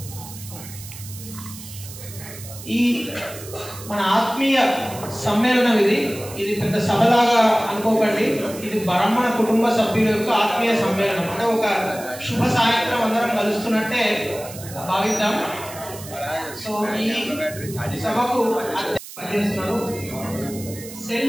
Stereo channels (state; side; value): noise; right; hiss, 14 dB below the sound